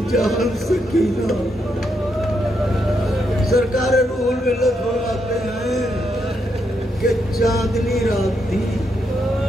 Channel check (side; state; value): both; normal; correlation 0.80